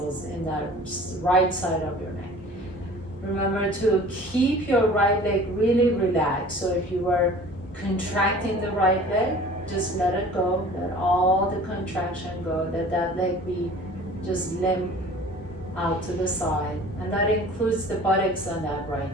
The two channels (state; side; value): normal; both; correlation 0.45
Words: in that right side of your neck. Remember to keep your right leg really relaxed. So if you were contracting the right leg, just let it go. Let all the contraction go. Let that leg be just limp out to the side. And that includes the buttocks on that right